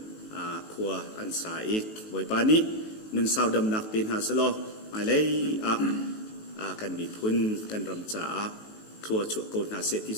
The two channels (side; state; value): right; late; 18 ms